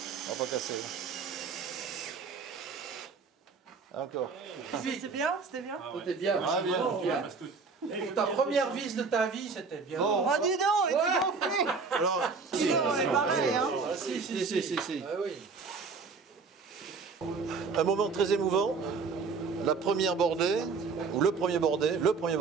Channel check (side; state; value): left; quieter; 4.8 dB